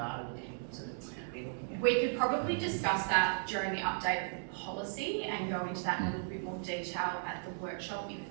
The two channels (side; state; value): left; silent; digital silence